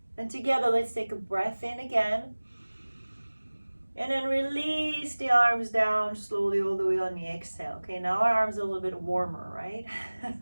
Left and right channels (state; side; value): inverted; both; correlation -1.00